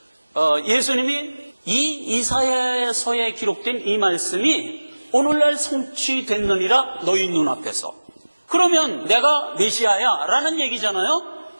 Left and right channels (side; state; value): both; inverted; correlation -1.00